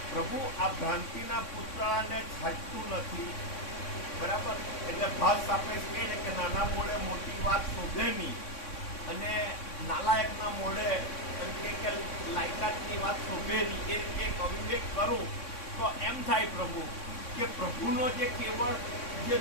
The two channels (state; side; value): late; right; 3.6 ms